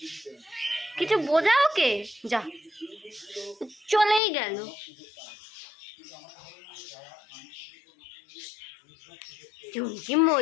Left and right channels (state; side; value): drops out; right; at 4.2 s